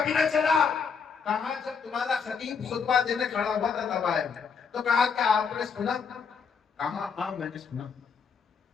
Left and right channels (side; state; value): right; quieter; 5.9 dB